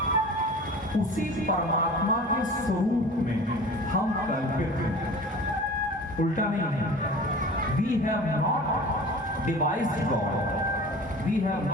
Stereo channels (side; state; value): both; normal; correlation 0.39